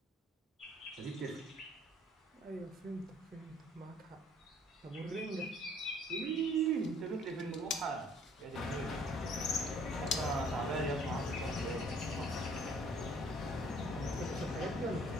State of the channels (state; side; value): normal; both; correlation 0.58